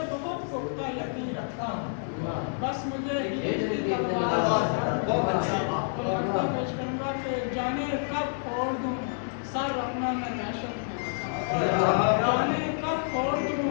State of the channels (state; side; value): silent; right; digital silence